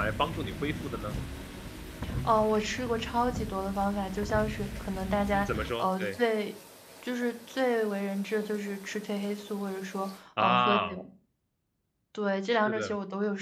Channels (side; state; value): both; identical; correlation 1.00